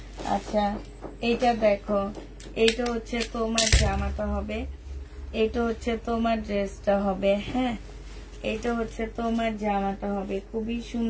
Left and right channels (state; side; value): identical; both; correlation 1.00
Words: আচ্ছা, এটা দেখো, এটা হচ্ছে তোমার জামাটা হবে, এটা হচ্ছে তোমার ড্রেসটা হবে। হ্যাঁ, এটা হচ্ছে তোমার জামাটা হবে। খুবই